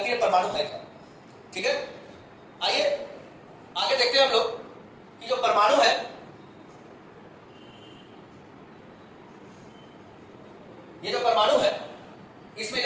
परमाणु है क्या। ठीक है, आइए आगे देखते हैं हम लोग कि जो परमाणु है, ये जो परमाणु है इसमें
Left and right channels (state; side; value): identical; both; correlation 1.00